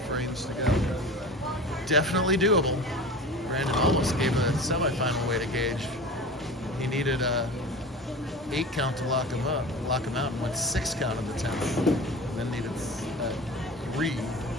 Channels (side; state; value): both; normal; correlation 0.34